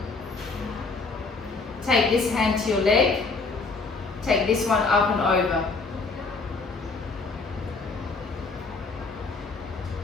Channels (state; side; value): quieter; right; 4.0 dB